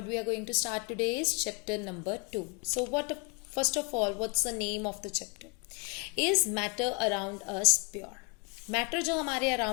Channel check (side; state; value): right; quieter; 33.8 dB